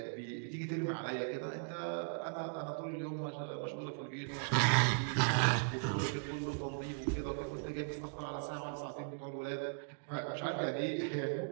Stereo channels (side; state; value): left; silent; digital silence